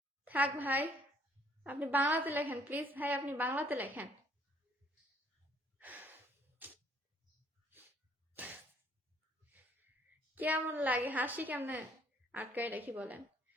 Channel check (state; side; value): normal; both; correlation 0.63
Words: থাক ভাই, আপনি বাংলাতে লেখেন প্লিজ ভাই, আপনি বাংলাতে লেখেন। কেমন লাগে, হাসি কেমনে আটকায় রাখি বলেন।